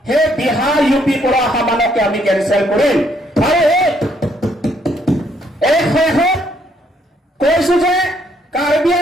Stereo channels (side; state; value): both; normal; correlation 0.69